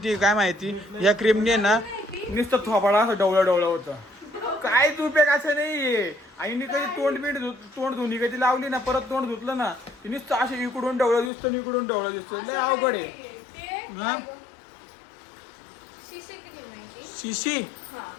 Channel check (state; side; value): drops out; right; at 11.3 s